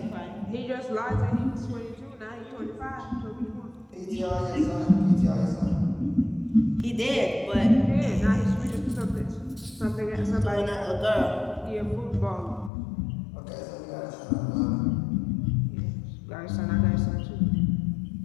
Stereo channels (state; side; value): drops out; right; at 12.7 s